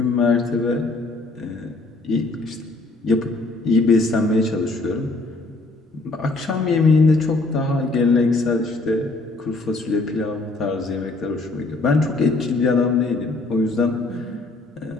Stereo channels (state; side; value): quieter; right; 3.2 dB